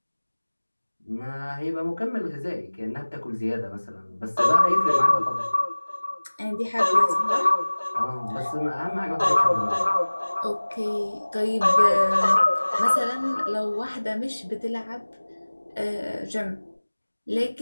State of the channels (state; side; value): inverted; both; correlation -1.00